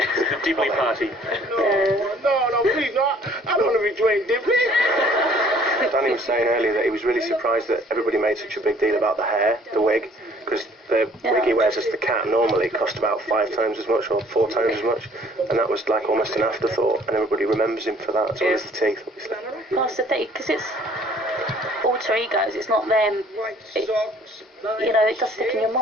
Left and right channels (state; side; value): normal; both; correlation 0.56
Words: The Dibley Party. No, please, no. I don't want to be Dwayne Dibley. Danny was saying earlier that he was really surprised that everybody made such a big deal about the hair, the wig, because the wig he wears as the cat normally cost about 5 times as much or 4 times as much, and that was like almost an afterthought, and everybody remembers him for that, as well as the teeth, obviously. Well, that's the thing, because it's alter egos. It's not them. It, it does stick in your